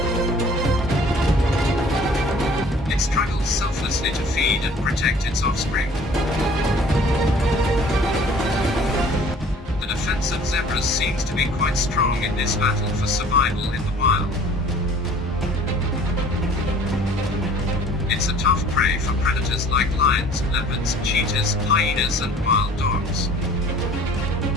It struggles selflessly to feed and protect its offspring. The defense of zebras seems to be quite strong in this battle for survival in the wild. It's a tough prey for predators like lions, leopards, cheetahs, hyenas and wild dogs.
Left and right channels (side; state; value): both; normal; correlation 0.51